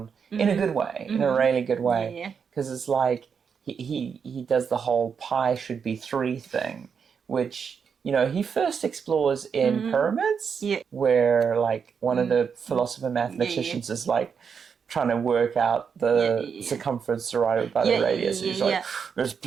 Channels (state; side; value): quieter; left; 6.5 dB